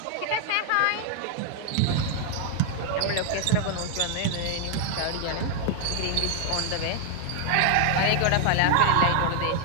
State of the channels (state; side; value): different; both; correlation 0.00